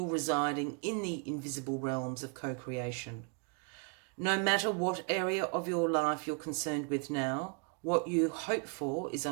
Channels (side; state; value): left; quieter; 36.3 dB